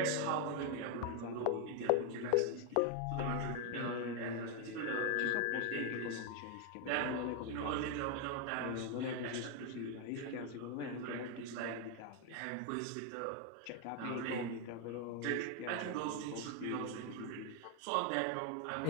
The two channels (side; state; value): both; different; correlation 0.01